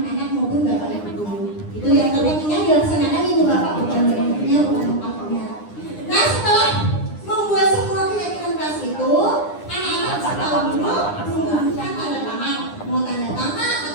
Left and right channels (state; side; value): late; right; 9.8 ms